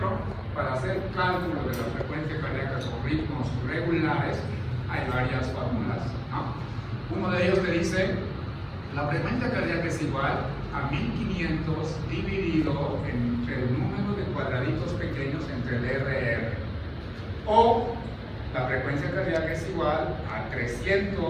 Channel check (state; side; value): identical; both; correlation 1.00